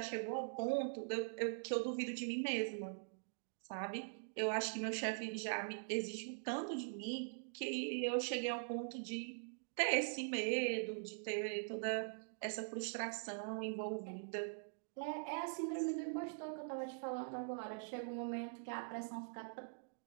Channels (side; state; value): left; silent; digital silence